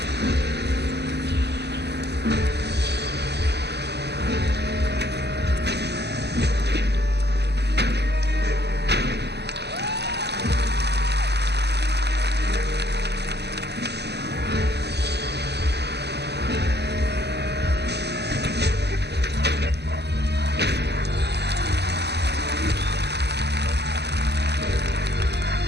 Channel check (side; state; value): left; late; 0.49 ms